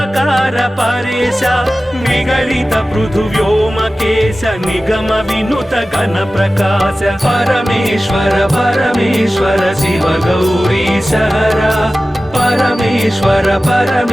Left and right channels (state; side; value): normal; both; correlation 0.96